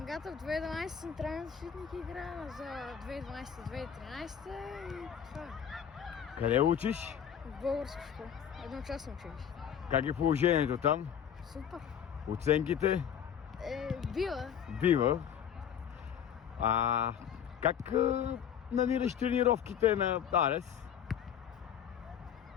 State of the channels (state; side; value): quieter; right; 8.7 dB